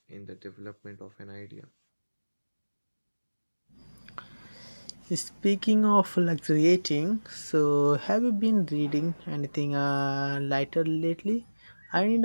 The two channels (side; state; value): both; inverted; correlation -1.00